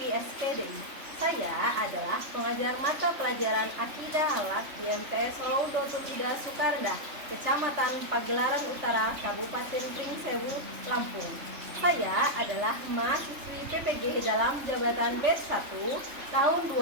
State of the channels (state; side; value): late; left; 3.4 ms